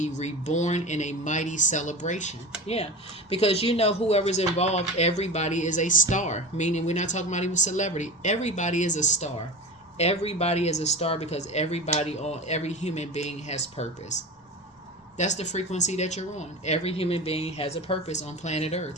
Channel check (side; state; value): both; normal; correlation 0.29